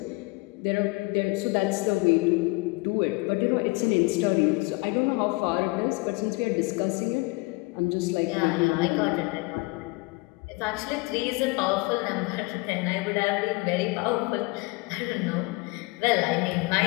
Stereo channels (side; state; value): right; quieter; 25.5 dB